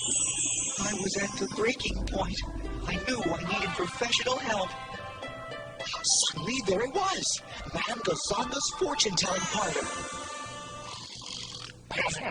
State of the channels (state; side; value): identical; both; correlation 1.00